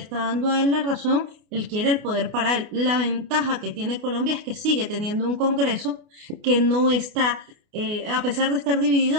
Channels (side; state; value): left; late; 28 ms